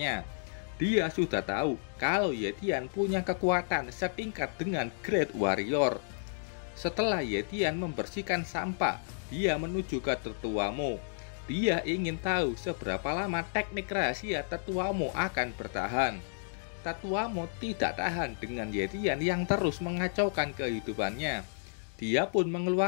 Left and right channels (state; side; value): silent; right; digital silence